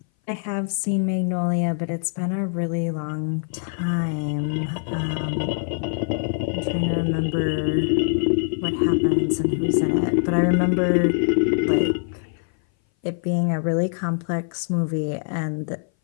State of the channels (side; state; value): right; silent; 59 dB below the other